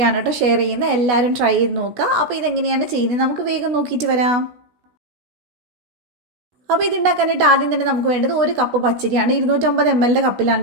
കേട്ടോ ഷെയർ ചെയ്യുന്നത്. എല്ലാവരും ട്രൈ ചെയ്ത് നോക്കുക. അപ്പോൾ ഇതെങ്ങനെയാണ് ചെയ്യുന്നത് നമുക്ക് വേഗം നോക്കിയിട്ട് വരാം. അപ്പോൾ ഇതുണ്ടാക്കാനായിട്ട് ആദ്യം തന്നെ നമുക്ക് വേണ്ടത് 1 കപ്പ് പച്ചരിയാണ്. 250 ml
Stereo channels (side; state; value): left; late; 16 ms